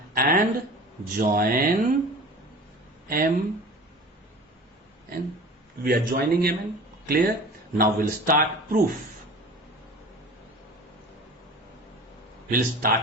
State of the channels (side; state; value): both; normal; correlation 0.39